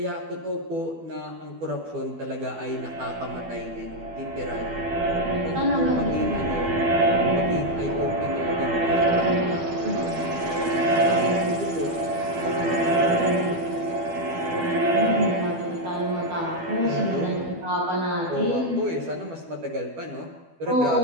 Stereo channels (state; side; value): late; left; 12 ms